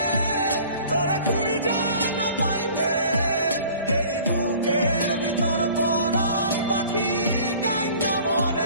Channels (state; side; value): inverted; both; correlation -0.49